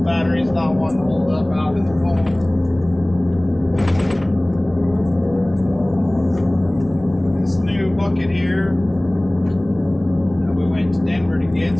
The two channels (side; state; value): left; noise; hum, 19 dB below the sound